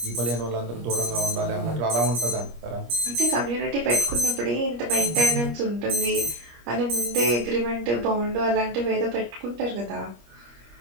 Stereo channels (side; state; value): left; late; 25 ms